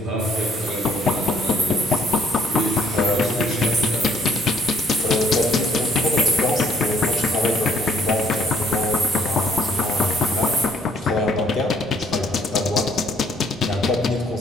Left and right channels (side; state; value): both; normal; correlation 0.63